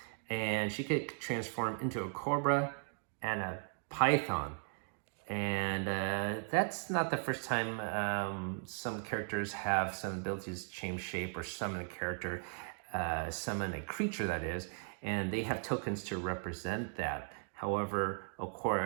and she could transform into a cobra and a python. And that's not the first time some characters have some abilities to change shape or summon a character, summon a creature that is, and they have tokens to represent that. However, of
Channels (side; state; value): left; silent; 53 dB below the other